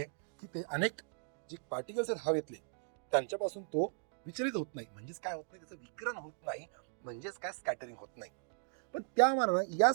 की ते अनेक जे पार्टिकल्स आहेत हवेतले त्यांच्यापासून तो विचलित होत नाही. म्हणजेच काय होत नाही, त्याचं विकिरण होत नाही, म्हणजेच काय स्कॅटरिंग होत नाही. पण त्या मानानं या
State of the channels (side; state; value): left; silent; digital silence